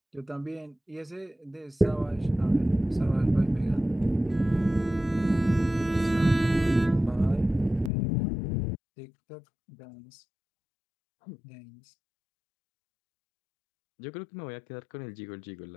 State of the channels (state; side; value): drops out; right; at 7.9 s